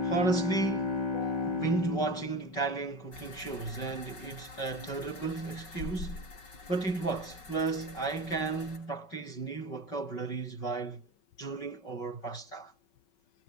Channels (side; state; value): right; late; 5.3 ms